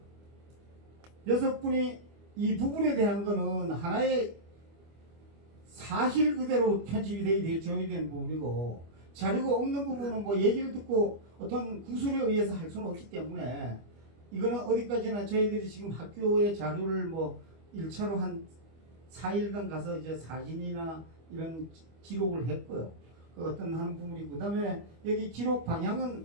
6분이 이 부분에 대한 거는 하나의 사실 그대로 편집이 되어야 되는 부분이고, 자료가 없는 부분은 뭐 얘기를 듣고 어떤 구술에 의해서 할 수는 없기 때문에, 이거는 어디까지나 저희들이 지금 학교의 자료를 뭐 1차로 한 4일간 가서 이제 사진이나 이런 기록을 했고요. 그 어떤 하는 부분이고, 그 다음에 여기 기록 방향은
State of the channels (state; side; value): late; left; 25 ms